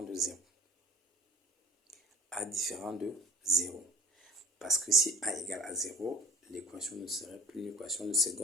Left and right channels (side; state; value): both; normal; correlation 0.43